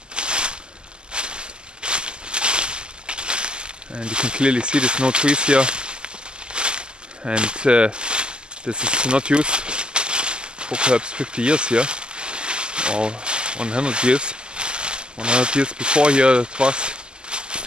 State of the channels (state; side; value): late; left; 0.047 ms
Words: And you can clearly see there's no trees here, and this is not used for perhaps 50 years here, or 100 years. 100 years before here it was